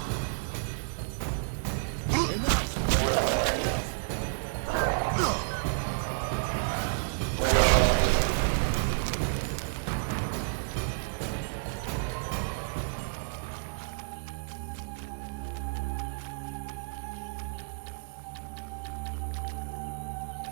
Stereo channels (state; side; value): silent; left; digital silence